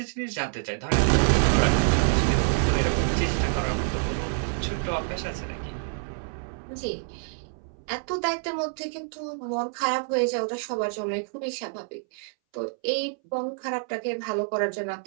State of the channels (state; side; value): silent; left; 60 dB below the other